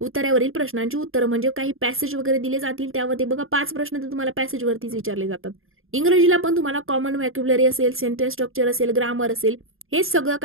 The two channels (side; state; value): left; late; 0.60 ms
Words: उत्तरावरील प्रश्नांची उत्तर म्हणजे काही पॅसेज वगैरे दिले जातील. त्यामध्ये बघा 5 प्रश्न तर तुम्हाला पॅसेज वरतीच विचारले जातात. इंग्रजीला पण तुम्हाला कॉमन व्हॅक्युलरी असेल, सेंटेन्स स्ट्रक्चर असेल, ग्रामर असेल, हे सगळं